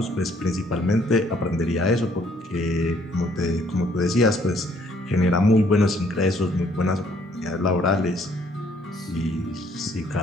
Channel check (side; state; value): both; normal; correlation 0.64